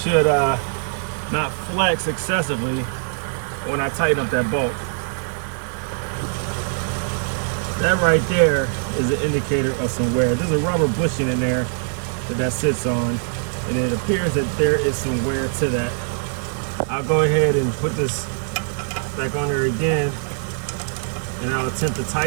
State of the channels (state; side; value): silent; left; 64 dB below the other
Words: not flex excessively when I tighten up that bolt. That right there is an indicator of some wear. There's a rubber bushing in there that sits on, and it appears that there is some wear to that. I'll go ahead and put this back on there again, and I'll attempt to